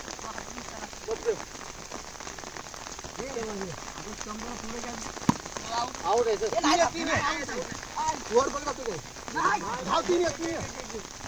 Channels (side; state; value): left; noise; hiss, 28 dB below the sound